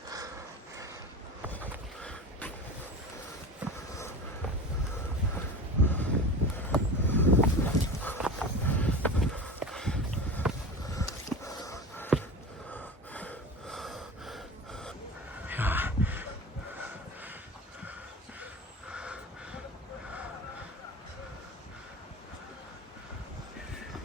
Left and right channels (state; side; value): normal; both; correlation 0.31